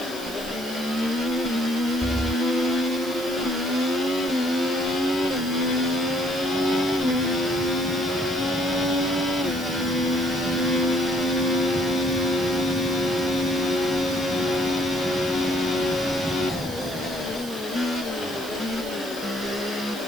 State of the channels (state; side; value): noise; right; hiss, 14 dB below the sound